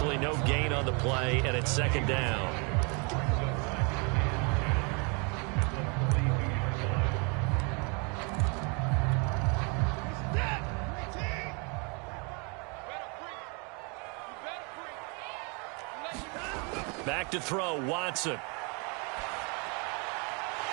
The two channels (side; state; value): left; quieter; 33.3 dB